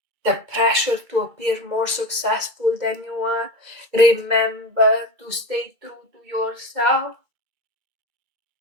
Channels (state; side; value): late; left; 2.3 ms